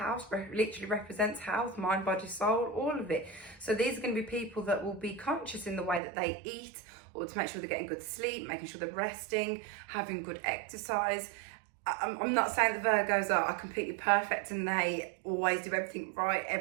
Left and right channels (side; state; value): left; drops out; at 6.0 s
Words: literally represents health, mind, body, soul, all of it. So these are going to be people that will be conscious in the way that they eat, or to make sure they're getting good sleep, making sure they're resting, having good exercise. I'm not saying the Virgos are completely perfect and they always do everything right.